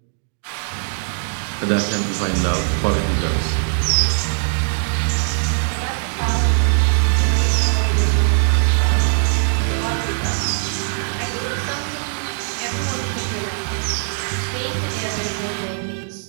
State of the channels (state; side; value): silent; left; digital silence